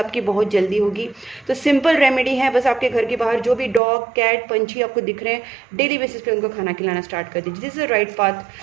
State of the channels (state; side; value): drops out; left; at 3.8 s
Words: बहुत जल्दी होगी। तो सिंपल रेमेडी है, बस आपके घर के बाहर जो भी डॉग, कैट, पंछी आपको दिख रहे हैं, डेली बेसिस पे उनको खाना खिलाना स्टार्ट कर दीजिए। दिस इज राइट